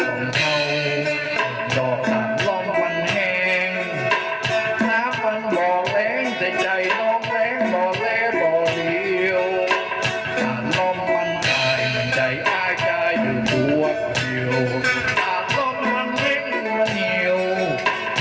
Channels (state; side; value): identical; both; correlation 1.00